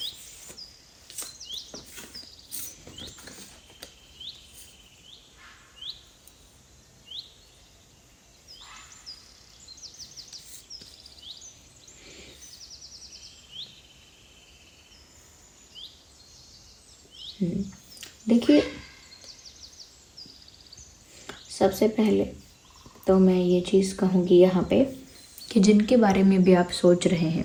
देखिए, सबसे पहले तो मैं ये चीज़ कहूँगी यहाँ पे कि जिनके बारे में भी आप सोच रहे हैं,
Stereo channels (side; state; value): both; identical; correlation 1.00